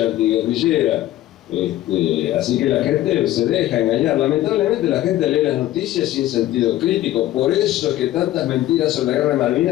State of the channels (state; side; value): quieter; right; 14.5 dB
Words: antiguerrillera. Así que la gente se deja engañar. Lamentablemente la gente lee las noticias sin sentido crítico. Por eso es que tantas mentiras sobre la guerra de